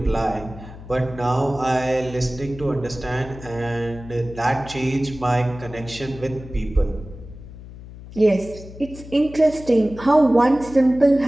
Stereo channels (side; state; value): left; noise; hum, 15 dB below the sound